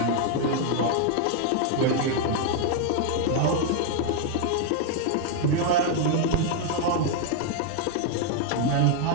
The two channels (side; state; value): both; different; correlation 0.00